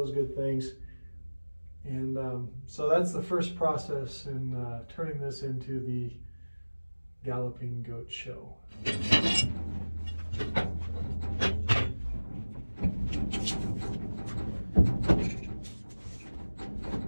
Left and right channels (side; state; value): both; inverted; correlation -1.00